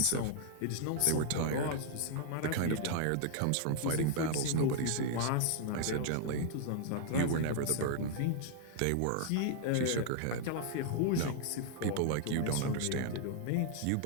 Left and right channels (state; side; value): different; both; correlation -0.01